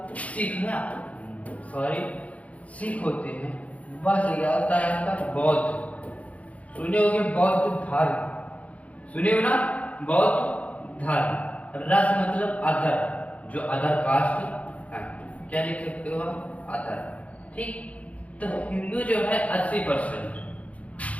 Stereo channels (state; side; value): late; right; 0.067 ms